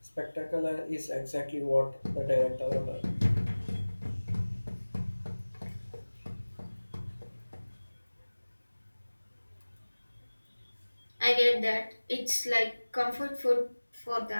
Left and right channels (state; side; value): inverted; both; correlation -1.00